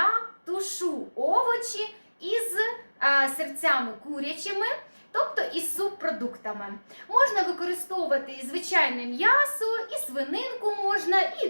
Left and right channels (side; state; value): both; inverted; correlation -1.00